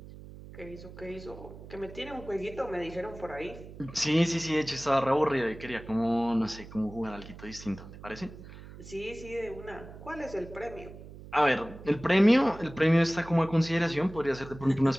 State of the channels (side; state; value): right; noise; hum, 16 dB below the sound